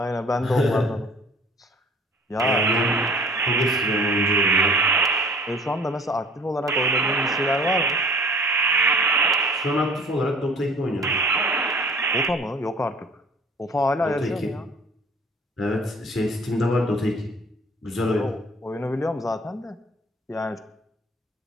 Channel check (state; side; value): normal; both; correlation 0.48